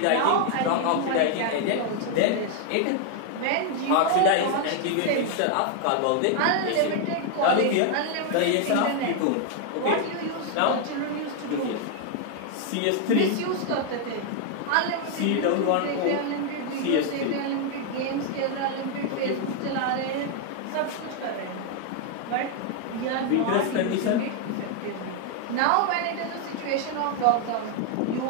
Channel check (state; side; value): different; both; correlation 0.00